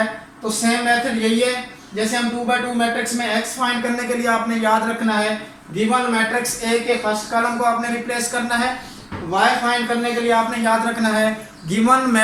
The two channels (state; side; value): identical; both; correlation 1.00